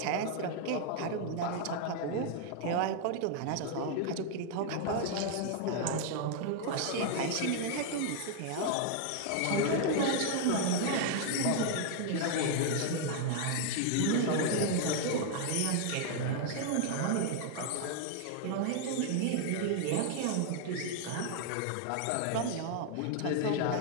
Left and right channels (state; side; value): different; both; correlation 0.00